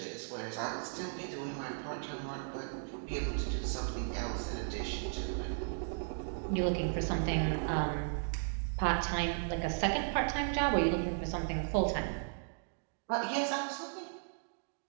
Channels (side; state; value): left; silent; digital silence